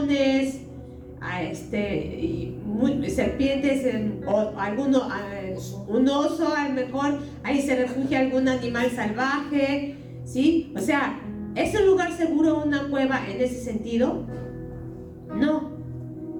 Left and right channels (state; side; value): identical; both; correlation 1.00